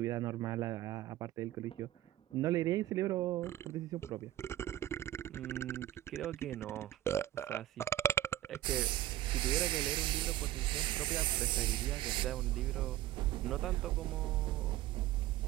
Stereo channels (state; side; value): quieter; left; 14.2 dB